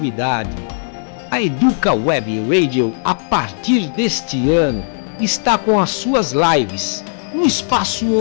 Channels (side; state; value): right; silent; digital silence